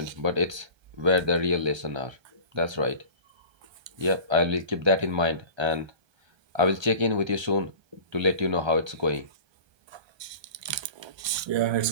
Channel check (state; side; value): late; left; 1.3 ms